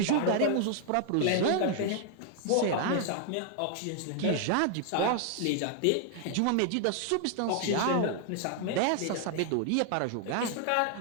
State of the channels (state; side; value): different; both; correlation 0.00